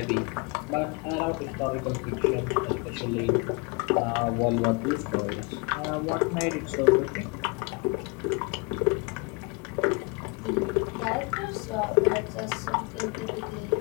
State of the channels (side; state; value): right; quieter; 29.6 dB